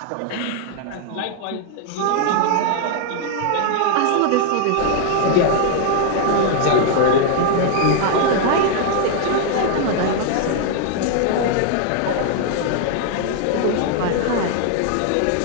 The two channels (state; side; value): different; both; correlation 0.00